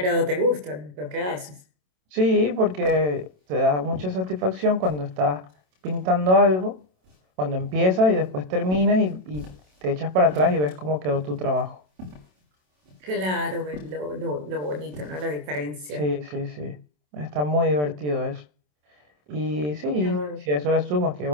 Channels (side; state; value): left; late; 27 ms